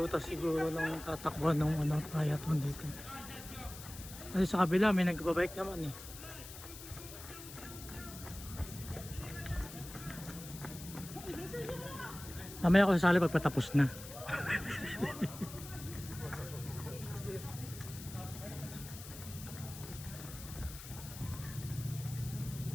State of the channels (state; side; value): noise; left; hiss, 13 dB below the sound